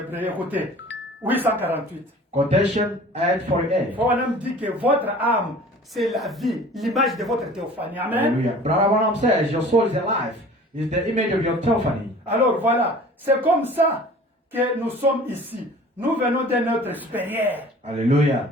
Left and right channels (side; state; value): both; normal; correlation 0.45